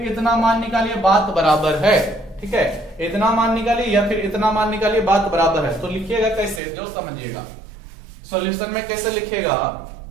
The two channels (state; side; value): drops out; left; at 6.6 s